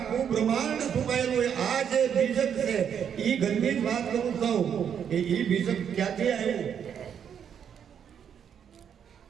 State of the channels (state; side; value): quieter; left; 8.2 dB